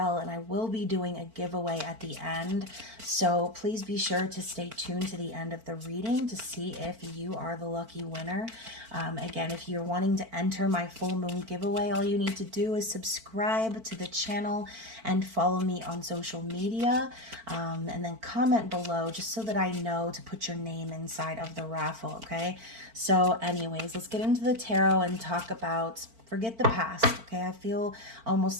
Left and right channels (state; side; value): late; left; 4.5 ms